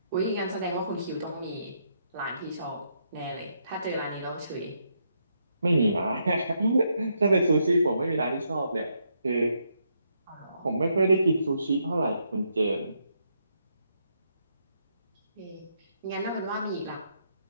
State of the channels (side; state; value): both; inverted; correlation -0.77